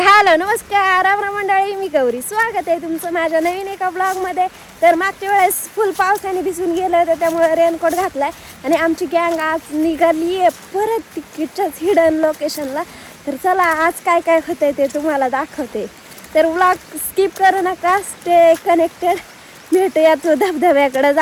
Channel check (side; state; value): both; identical; correlation 1.00